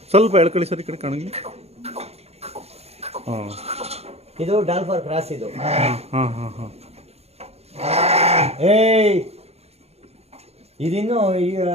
ಸ್ವಲ್ಪ ಎಳ್ಕೊಳ್ಳಿ ಸರ್ ಈ ಕಡೆ ಕಾಣಂಗಿಲ್ಲ. ಹಾಂ, ಇದು ಡಾಲ್ಫರ್ ಕ್ರಾಸ್ ಇದು. ಹಾಂ ಹಾಂ ಹಾಂ ಹಾಂ. ಏಯ್, ಇದಿನ್ನು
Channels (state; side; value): late; left; 0.30 ms